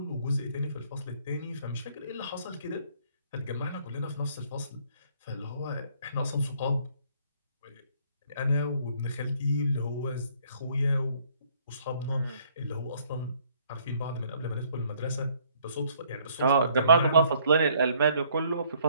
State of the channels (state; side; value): inverted; both; correlation -0.63